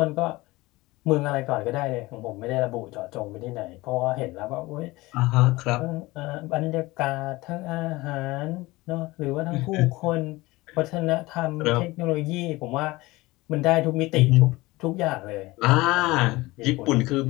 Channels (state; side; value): quieter; right; 20.7 dB